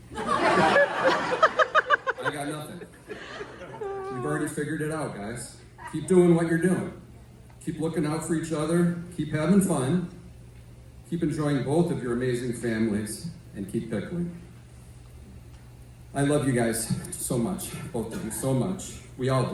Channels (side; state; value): both; identical; correlation 1.00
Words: I got nothing. You've already figured it out, guys. Keep doing what you're doing. Keep looking out for each other. Keep having fun. Keep enjoying both of your amazing families, and keep pickling. I love you guys so much, both of you so much. We all